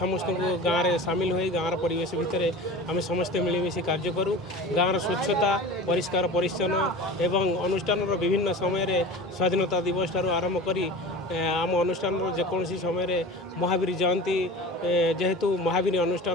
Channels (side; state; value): both; normal; correlation 0.35